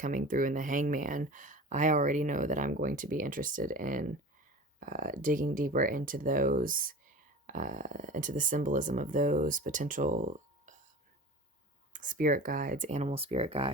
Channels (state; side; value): normal; both; correlation 0.36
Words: through in the Hangman. I already know that I'm going to be interested in digging deeper into those, into the symbolism of those potential spirit guides, animal spirit